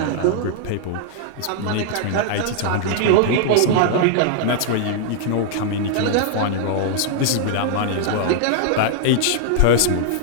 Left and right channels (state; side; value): different; both; correlation -0.01